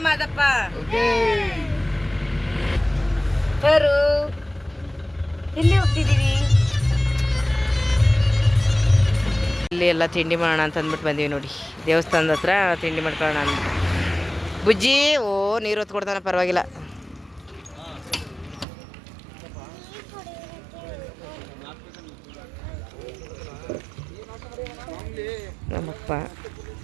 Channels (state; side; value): drops out; left; at 18.7 s